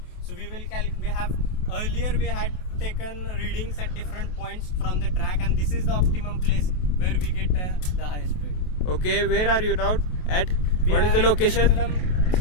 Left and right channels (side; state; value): right; late; 28 ms